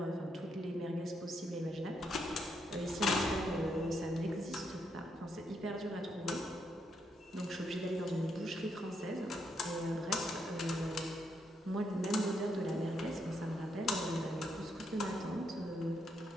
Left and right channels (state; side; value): normal; both; correlation 0.78